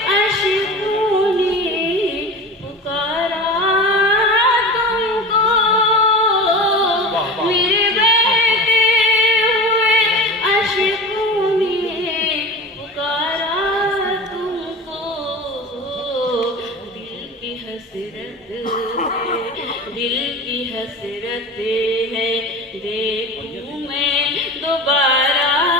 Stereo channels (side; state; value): both; normal; correlation 0.32